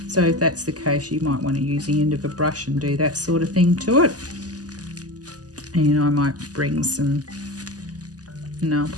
So if that's the case, you might want to use the end of a brush and do that sort of thing to it. And I might bring some nail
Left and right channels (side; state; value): left; late; 0.67 ms